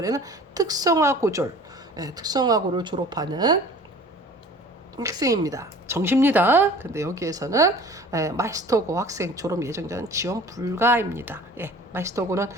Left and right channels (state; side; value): normal; both; correlation 0.46